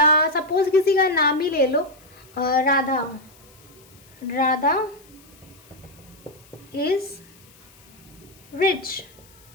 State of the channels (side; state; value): left; noise; hiss, 26 dB below the sound